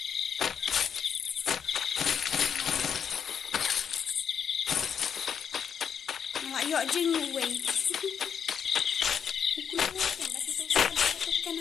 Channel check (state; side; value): quieter; right; 7.6 dB